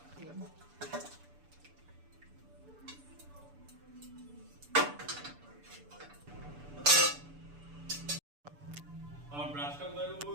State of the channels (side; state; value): left; late; 6.9 ms